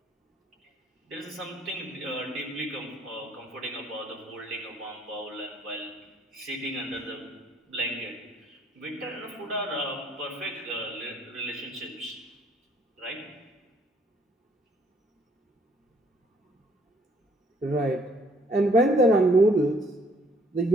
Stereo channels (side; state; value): both; normal; correlation 0.64